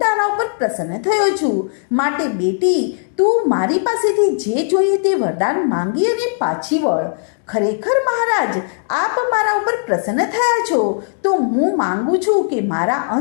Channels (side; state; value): right; silent; digital silence